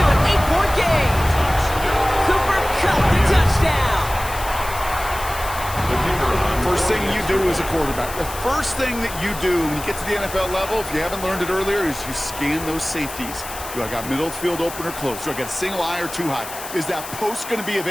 an 8-point game. Cooper Kupp, the touchdown. First thing you do as a quarterback, the first thing that you do when you get to the NFL level, if you haven't learned it earlier, is you scan those safeties. Do I got middle of the field open or close? Do I got a single eye or too high? Is that post going to be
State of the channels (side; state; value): left; noise; hiss, 11 dB below the sound